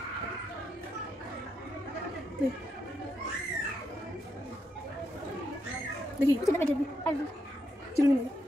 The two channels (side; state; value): both; normal; correlation 0.81